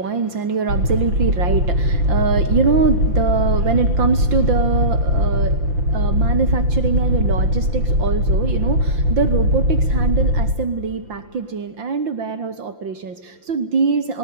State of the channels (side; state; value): left; late; 5.8 ms